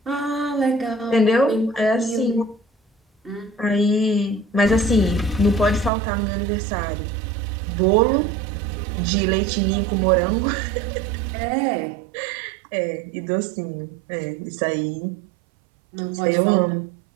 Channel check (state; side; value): drops out; left; at 5.9 s